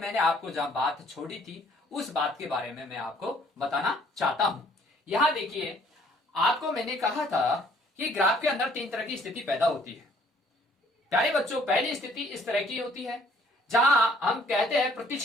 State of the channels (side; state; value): both; normal; correlation 0.61